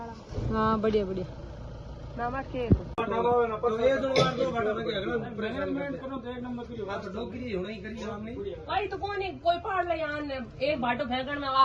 हाँ बढ़िया बढ़िया नामा के भाई तो कौन है कोई पहाड़ ले यहाँ एक भाटो फेंकण में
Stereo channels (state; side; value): identical; both; correlation 1.00